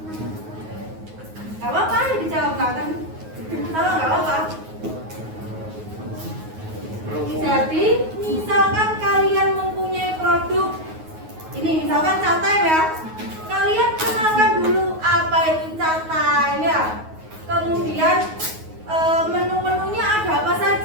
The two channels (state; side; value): late; left; 9.4 ms